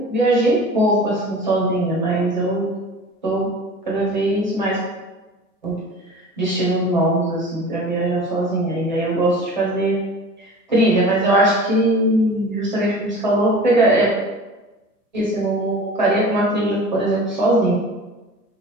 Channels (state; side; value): normal; both; correlation 0.39